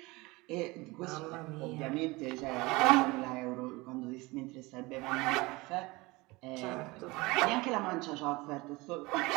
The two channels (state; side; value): quieter; left; 22.8 dB